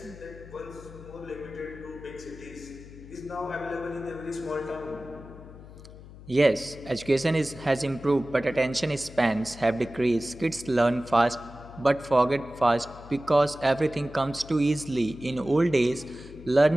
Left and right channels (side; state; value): left; noise; hum, 17 dB below the sound